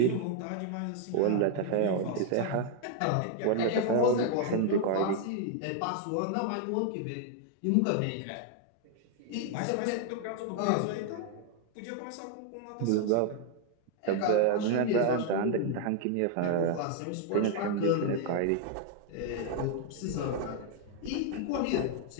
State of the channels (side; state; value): both; different; correlation 0.00